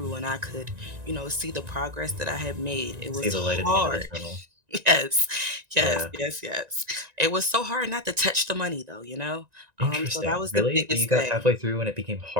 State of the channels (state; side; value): late; left; 1.9 ms